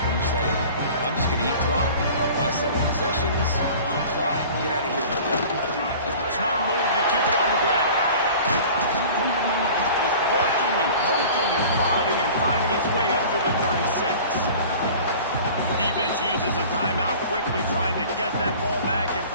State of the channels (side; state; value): both; inverted; correlation -0.43